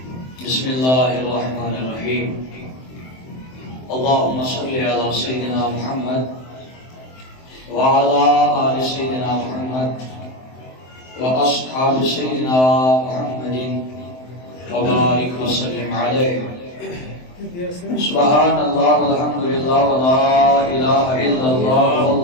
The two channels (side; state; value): right; late; 23 ms